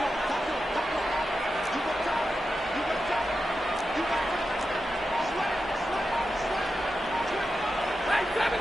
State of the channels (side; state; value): both; normal; correlation 0.90